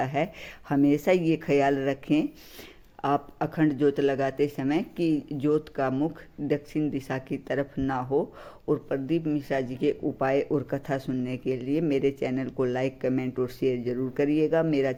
है। हमेशा ये ख्याल रखें आप अखंड ज्योत लगाते समय कि ज्योत का मुख दक्षिण दिशा की तरफ ना हो। और प्रदीप मिश्रा जी के उपाय और कथा सुनने के लिए मेरे चैनल को लाइक कमेंट और शेयर जरूर करिएगा। मेरा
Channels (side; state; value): both; identical; correlation 1.00